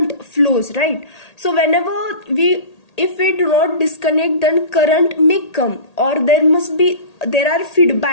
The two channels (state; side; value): late; right; 1.8 ms